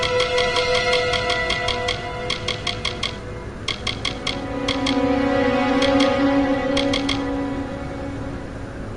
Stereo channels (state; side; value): identical; both; correlation 1.00